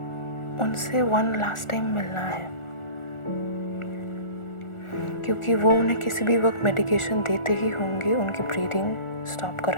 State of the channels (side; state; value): right; late; 1.4 ms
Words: उनसे वन लास्ट टाइम मिलना है, क्योंकि वो उन्हें किसी भी वक्त मेडिकेशन देते ही होंगे उनकी ब्रीदिंग स्टॉप